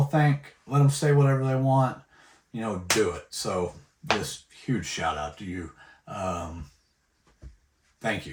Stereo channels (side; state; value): both; identical; correlation 1.00